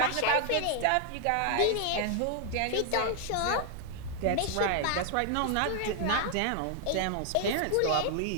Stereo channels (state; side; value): different; both; correlation 0.00